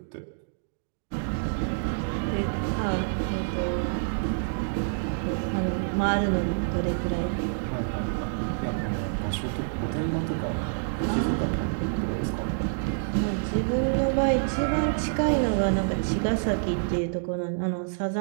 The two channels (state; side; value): silent; left; digital silence